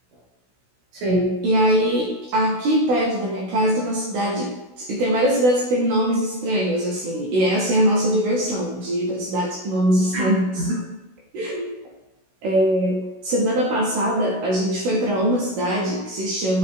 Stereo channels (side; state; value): left; late; 16 ms